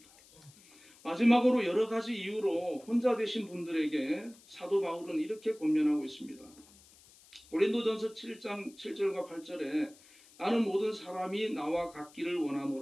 마지막으로 여러 가지 이유로 혼자 되신 분들에게 사도 바울은 이렇게 권면하고 있습니다. 고린도전서 7장 7절과 8절에 나는 모든 사람이 나와 같기를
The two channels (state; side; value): noise; left; hiss, 25 dB below the sound